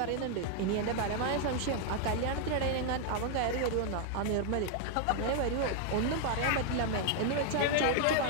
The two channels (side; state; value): both; different; correlation 0.00